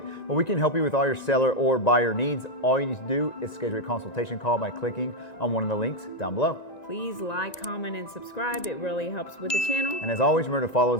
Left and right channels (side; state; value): right; late; 1.9 ms